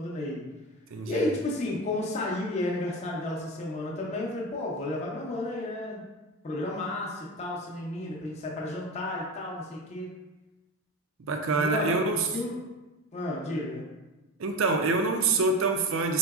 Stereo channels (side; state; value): both; normal; correlation 0.24